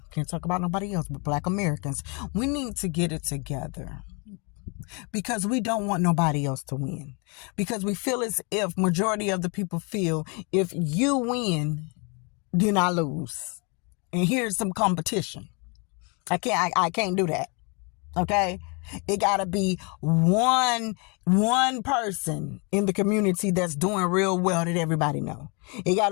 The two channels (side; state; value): right; quieter; 33.5 dB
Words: can't talk about nobody else but Black Americans. We need to get it together, because we don't want nobody else to win. Because we feel as if majority of the people feel if you win, then I lose. And here's some competition. I can't do that. Okay, it gotta be one person in the community that's doing real well that everybody know. It